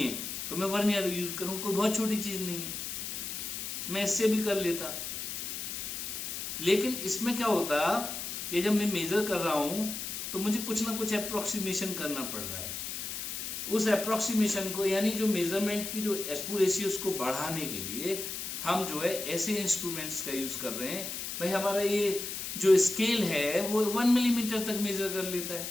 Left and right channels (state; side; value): noise; left; hiss, 5 dB below the sound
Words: तो मैं वर्नियर यूज करूँ, कोई बहुत छोटी चीज़ नहीं है, मैं इससे भी कर लेता। लेकिन इसमें क्या होता कि जब मैं मेजर कर रहा हूँ तो मुझे कुछ ना कुछ अप्रोक्सीमेशन करना पड़ रहा है। उस अप्रोक्सीमेशन को, यानी जो मेजरमेंट की जो एक्यूरेसी, उसको बढ़ाने के लिए हम जो है ऐसे इंस्ट्रूमेंट्स का यूज कर रहे हैं। भाई हमारा ये जो स्केल है वो 1 मिलीमीटर तक मेजर कर लेता है।